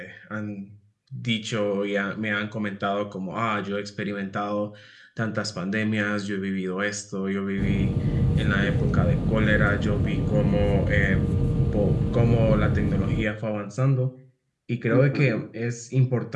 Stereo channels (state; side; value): identical; both; correlation 1.00